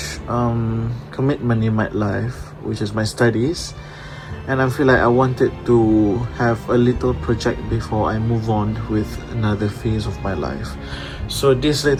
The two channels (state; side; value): identical; both; correlation 1.00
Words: commitment in my life, which is my studies, and I feel like I wanted to have a little project before I move on with another phase of my life. So this